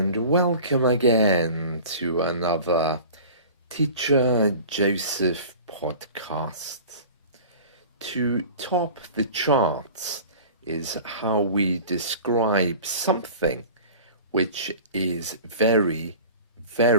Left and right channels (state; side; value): inverted; both; correlation -0.40